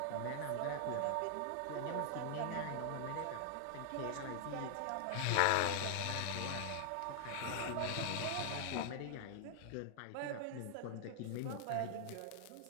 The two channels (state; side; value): different; both; correlation 0.00